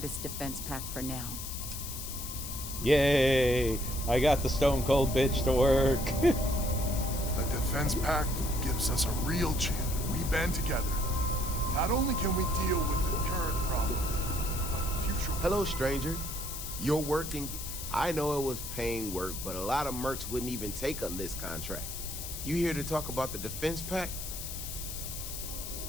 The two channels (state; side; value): noise; left; hiss, 7 dB below the sound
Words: defense pact for now. Yay! I got the stone cold bitch to work. A defense pact gives us a real chance. We band together. Not only can we deal with the current problem, but future... Hello, stranger. You're working... I know it was paying work, but a lot of mercs wouldn't even take a list contract. You here to talk about the defense pact?